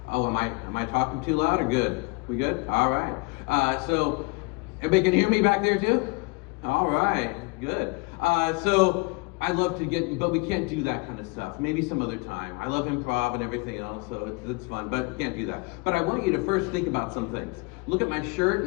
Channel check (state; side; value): quieter; right; 28.0 dB